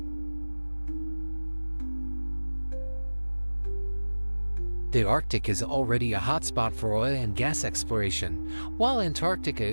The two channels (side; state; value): both; inverted; correlation -1.00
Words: The Arctic is already a hotspot for oil and gas exploration, while